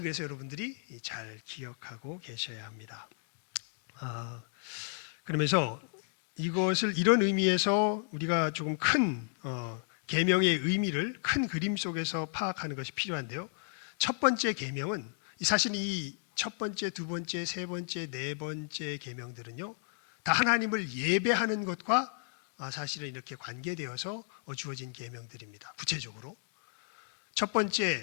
그래서 여러분들이 잘 기억하고 계셔야 합니다. 그러면서 이것을 이런 의미에서 우리가 조금 큰 계명의 의미를 큰 그림 속에서 파악하는 것이 필요한데요. 첫 번째 계명은 사실 이 첫 번째, 두 번째, 세 번째, 네 번째 계명들은요. 다 하나님을 예배하는 것과 사실은 이렇게 관계되어서 주어진 계명들입니다. 구체적으로 첫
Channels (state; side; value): silent; right; 55 dB below the other